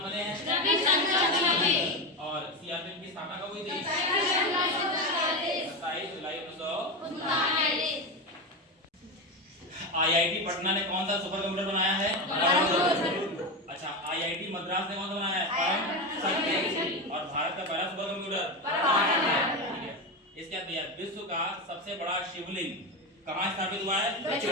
बने हैं? और सीआरपीएफ की स्थापना कब हुई थी? 27 जुलाई 1939। आईआईटी पटना ने कौन सा सुपर कंप्यूटर बनाया है? अच्छा, आईआईटी मद्रास ने कौन सा बनाया है? और भारत का पहला सुपर कंप्यूटर, ठीक है। इसके बाद विश्व का सबसे बड़ा शिवलिंग कहाँ स्थापित हुआ है?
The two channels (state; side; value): normal; both; correlation 0.17